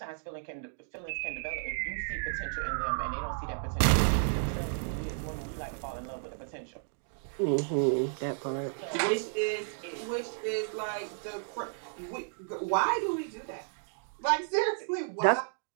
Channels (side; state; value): left; silent; digital silence